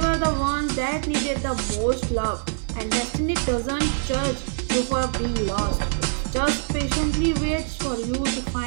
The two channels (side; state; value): left; silent; digital silence